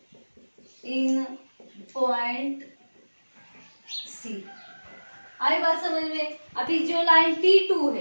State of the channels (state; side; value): inverted; both; correlation -1.00